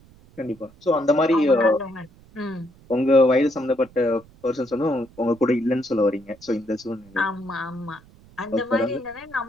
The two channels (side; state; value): right; noise; rumble, 26 dB below the sound